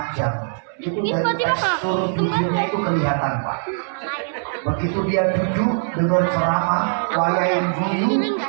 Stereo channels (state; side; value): silent; left; 65 dB below the other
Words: itu dari tekstur tubuhnya itu kelihatan Pak. Begitu dia duduk dengan ceramah, wayain guyu,